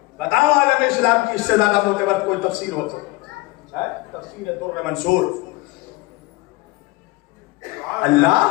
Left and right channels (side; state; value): right; quieter; 22.2 dB